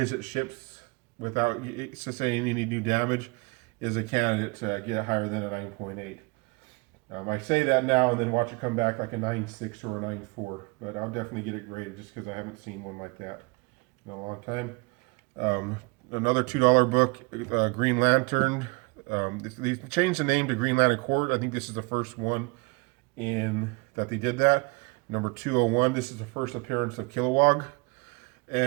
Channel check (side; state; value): left; quieter; 28.8 dB